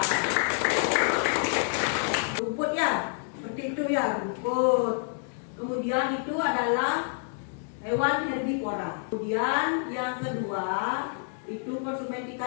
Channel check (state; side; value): silent; right; 59 dB below the other